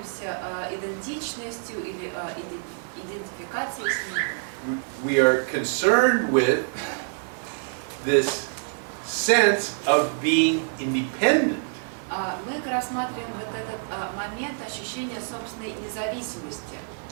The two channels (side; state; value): left; silent; digital silence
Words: идентичностью или идентификацией с ним. We are concerned with this sense of being independent. Мы рассматриваем вот этот момент ощущения собственной независимости.